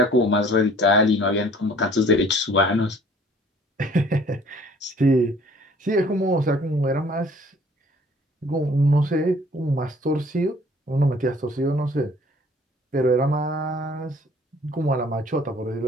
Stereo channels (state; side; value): normal; both; correlation 0.54